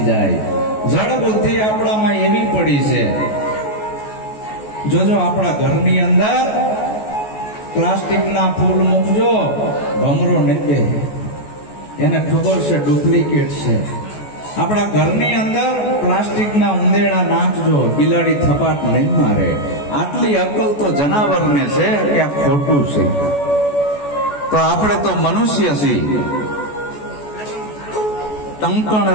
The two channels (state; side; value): late; right; 14 ms